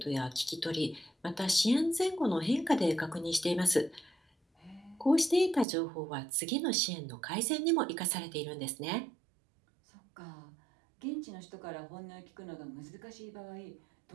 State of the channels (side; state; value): left; drops out; at 5.7 s